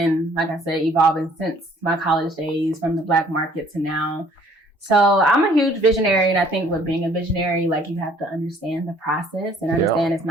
like I said, evolving since my college days, from the Black market to now. So I'm a huge visionary. And I think with being a visionary, like you have to understand the process and understand it's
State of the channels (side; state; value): both; normal; correlation 0.58